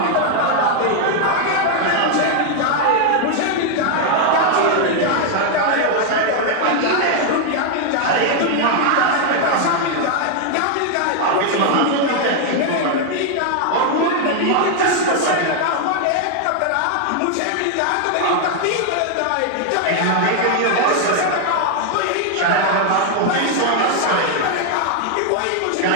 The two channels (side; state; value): both; different; correlation 0.00